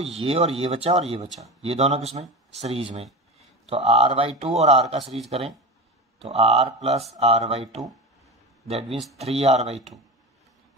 ये और ये बचा और ये बचा, ये दोनों किसमें, सीरीज में। तो r/2 और r का सीरीज करें तो r plus r/2 that means 3r/2।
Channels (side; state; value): both; normal; correlation 0.25